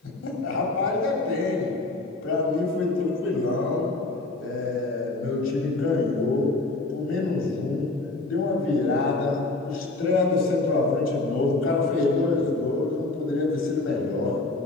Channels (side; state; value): right; quieter; 3.0 dB